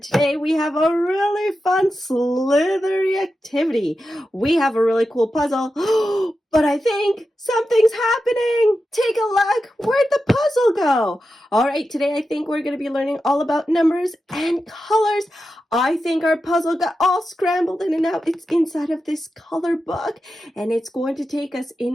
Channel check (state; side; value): normal; both; correlation 0.90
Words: Today we have a really fun slithery activity. We have a really cool puzzle, but I think something's happening. Take a look. Where'd the puzzle go? All right, today I think we're going to be learning all about numbers and colors. I think our puzzle got all scrambled in and out. It's inside of this color book, and it's going to take us